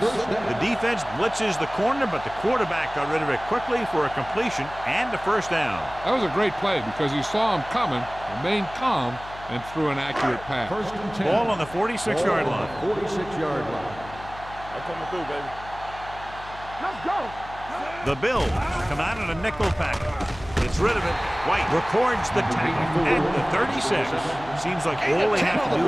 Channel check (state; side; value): noise; left; hum, 16 dB below the sound